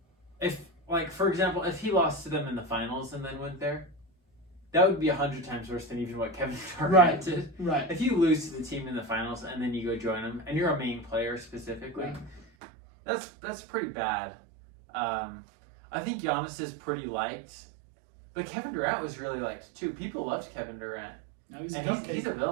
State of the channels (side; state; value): left; drops out; at 12.5 s